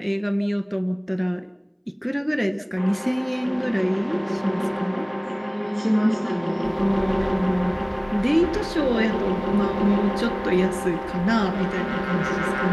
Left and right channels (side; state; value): both; identical; correlation 1.00